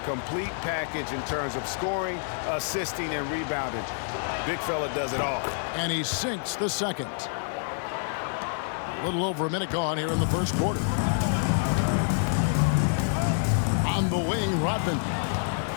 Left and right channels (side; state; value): right; silent; digital silence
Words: complete package in terms of scoring, assisting, and rebounding. Big fella does it all. And he sinks the second. A little over a minute gone here in the first quarter. On the wing, Rodman.